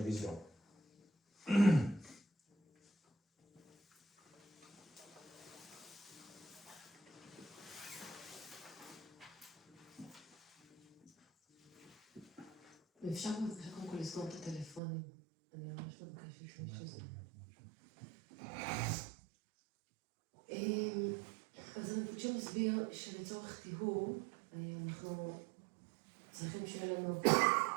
wisdom. ואפשר בבקשה קודם כל לסגור את הטלפונים. אני ממש מבקשת שזה. אז רינפוצ'ה מסביר שלצורך טיהור אנחנו צריכים שיהיה לנו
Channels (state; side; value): drops out; left; at 14.8 s